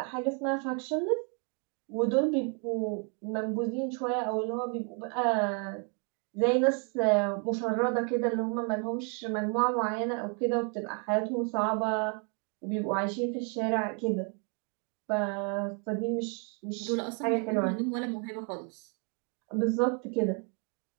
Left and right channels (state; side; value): quieter; left; 38.3 dB